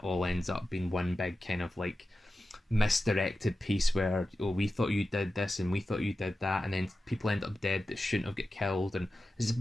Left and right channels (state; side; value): normal; both; correlation 0.93